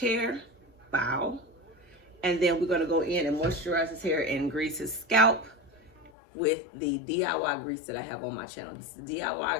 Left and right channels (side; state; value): right; drops out; at 6.1 s